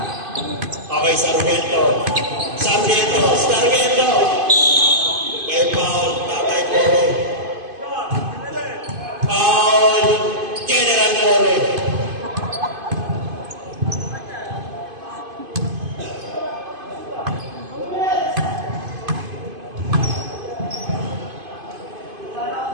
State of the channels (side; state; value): left; late; 2.5 ms